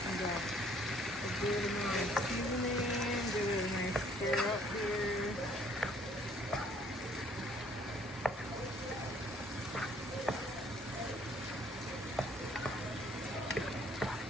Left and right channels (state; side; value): normal; both; correlation 0.61